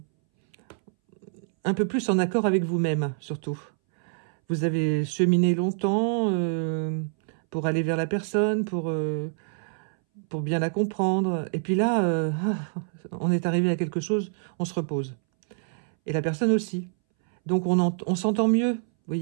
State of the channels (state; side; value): silent; left; 61 dB below the other